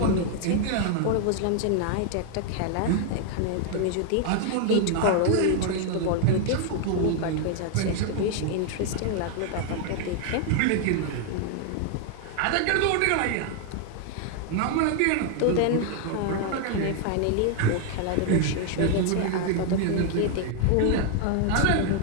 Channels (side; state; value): both; different; correlation 0.00